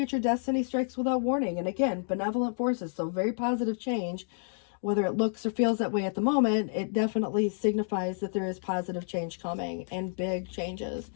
destiny strikes without warning. And again, benevolent forces, so very positive change. Whether it looks or feels that way at the moment, it definitely signifies that there is positive change coming, and big changes,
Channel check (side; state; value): right; silent; digital silence